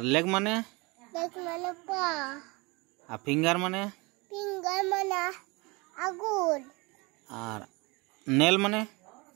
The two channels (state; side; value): quieter; left; 26.2 dB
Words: लेग माने लेग माने पाँव, फिंगर माने फिंगर माने आंगुर, और नेल माने